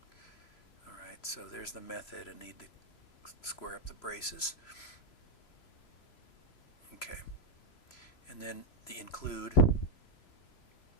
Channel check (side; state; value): right; late; 3.0 ms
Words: Alright, so there's the method. I need to square up the braces. Okay. And then the include.